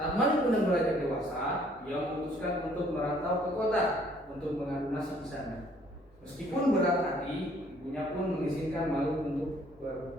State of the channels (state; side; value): normal; both; correlation 0.61